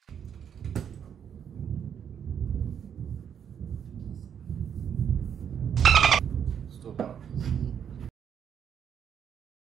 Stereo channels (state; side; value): quieter; left; 8.3 dB